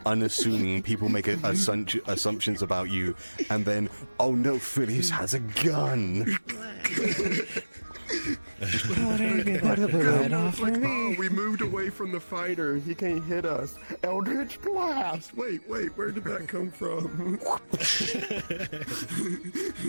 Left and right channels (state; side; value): inverted; both; correlation -1.00